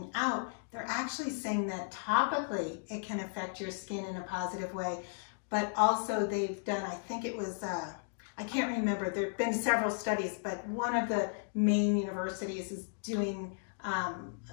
out, they're actually saying that topically it can affect your skin in a positive way. But also they've done, I think it was, I can't remember, there have been several studies, but one of the main universities is doing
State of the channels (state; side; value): silent; right; digital silence